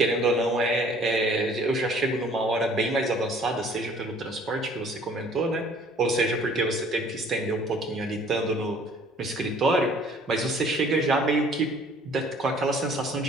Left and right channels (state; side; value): normal; both; correlation 0.55